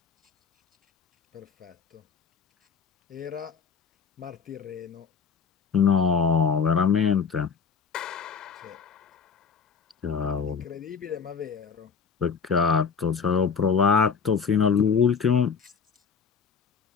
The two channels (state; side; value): quieter; right; 6.1 dB